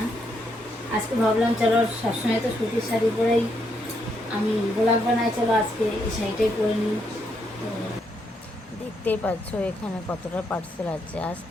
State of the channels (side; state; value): both; normal; correlation 0.77